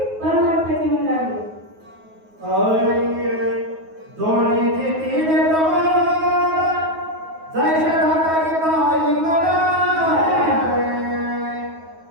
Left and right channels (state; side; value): late; left; 9.4 ms